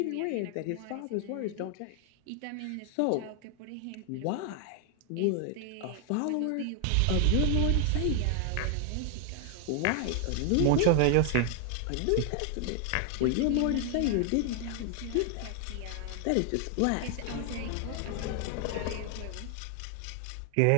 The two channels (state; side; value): different; both; correlation 0.00